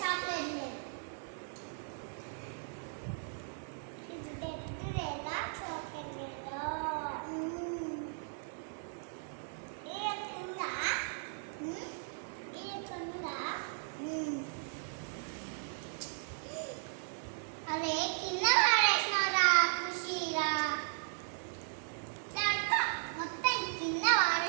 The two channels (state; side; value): silent; left; 53 dB below the other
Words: చాక్లెట్ లేదు. ఇది బ్రెడ్ లేదా చాక్లెట్ లేదా? అదే కింద వాడేసినరా ఖుషీరా, మొత్తం కింద